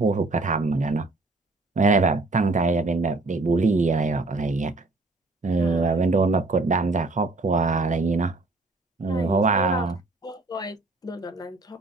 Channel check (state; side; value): quieter; left; 3.4 dB